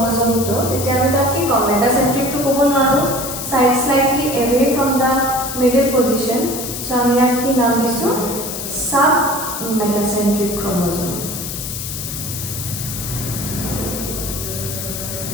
তেতিয়া আমি তাক কি কম? মেটাসেন্ট্ৰিক টু ক'ব নোৱাৰো, side slightly away from the middle position. So আমি ইয়াক কি নাম দিছো? sub metacentric chromosome.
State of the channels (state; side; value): noise; left; hiss, 6 dB below the sound